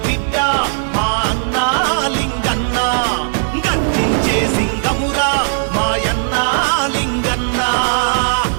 బిడ్డ మా అన్న లింగన్న గర్జించే సింగమురా మాయన్న లింగన్న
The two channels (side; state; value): left; silent; digital silence